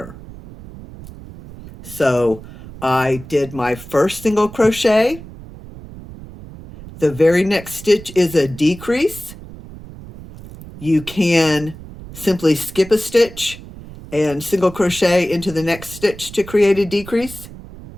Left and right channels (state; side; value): noise; right; rumble, 16 dB below the sound